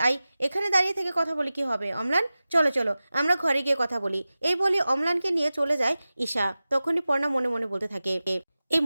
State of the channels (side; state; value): both; inverted; correlation -0.96